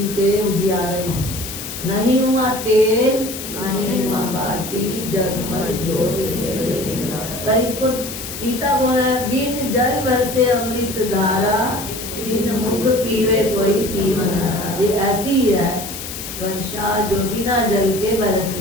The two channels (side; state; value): left; noise; hiss, 9 dB below the sound